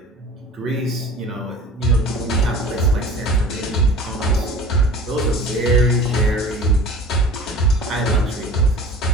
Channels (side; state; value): both; normal; correlation 0.42